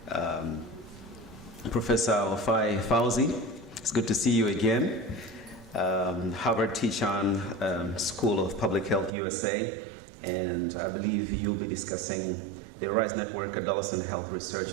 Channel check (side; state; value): left; drops out; at 9.1 s